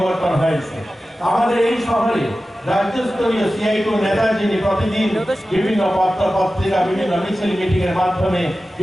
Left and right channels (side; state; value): both; normal; correlation 0.94